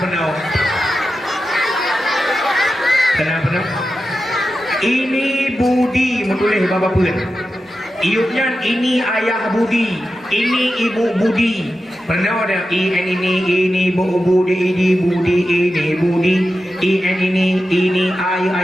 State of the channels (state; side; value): normal; both; correlation 0.91